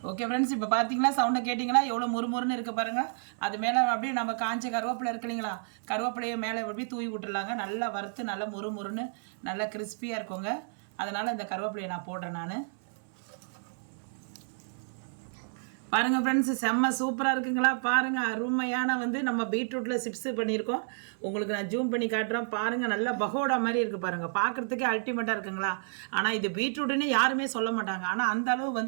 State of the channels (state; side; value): silent; left; 56 dB below the other